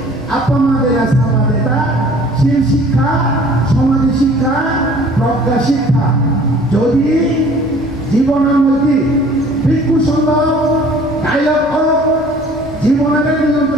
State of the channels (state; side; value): noise; right; rumble, 22 dB below the sound